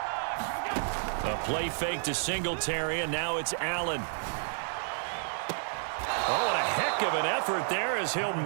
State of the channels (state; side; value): silent; left; 57 dB below the other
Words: A play fake to Singletary, and now it's Allen. Oh, and a heck of an effort there as he'll